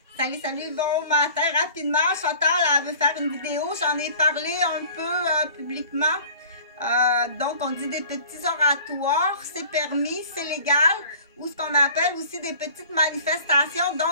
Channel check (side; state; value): both; inverted; correlation -0.47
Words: Salut, salut, bon matin. Rapidement, Chantal, elle veut faire une vidéo. J'en ai parlé un peu publiquement. Donc, on dit des petits oratoires. C'est permis, c'est légal. Ou ce qu'on appelle aussi des petites manifestations.